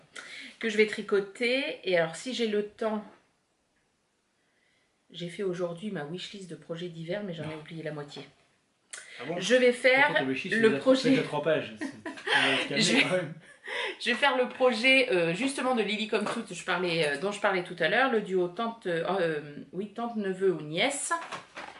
que je vais tricoter, et alors si j'ai le temps, j'ai fait aujourd'hui ma wishlist de projets d'hiver, mais j'en ai oublié la moitié. Ah bon? Je vais faire le projet. C'est 3 pages. Je vais faire le projet justement de Lily Come True dont je parlais tout à l'heure, le duo tante neveu ou nièce.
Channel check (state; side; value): identical; both; correlation 1.00